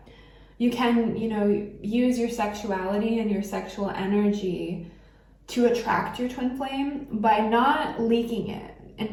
you can, use your sexuality and your sexual energy to attract your twin flame by not leaking it,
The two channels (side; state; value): both; identical; correlation 1.00